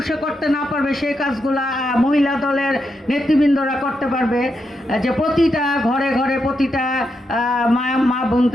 করতে না পারবে সেই কাজগুলো মহিলা দলের নেতৃবৃন্দরা করতে পারবে। যে প্রতিটা ঘরে ঘরে প্রতিটা মা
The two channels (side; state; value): both; normal; correlation 0.84